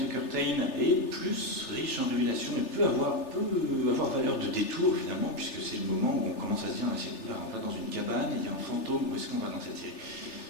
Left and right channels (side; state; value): right; late; 3.4 ms